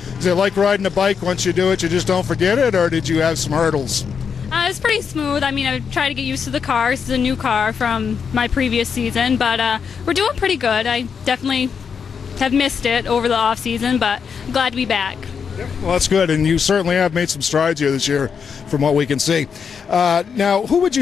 is it like riding a bike? Once you do it, you just don't forget it, or did you have some hurdles? It was pretty smooth. I mean, I tried to get used to the car. This is a new car from my previous season, but we're doing pretty good. I definitely have missed it over the off season, but I'm glad to be back. Well, that's good, and you certainly have made some strides here this year from what we can see. Now, who would you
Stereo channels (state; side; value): quieter; right; 6.5 dB